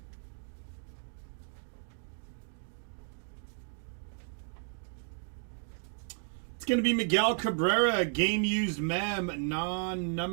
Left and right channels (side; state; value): left; silent; 55 dB below the other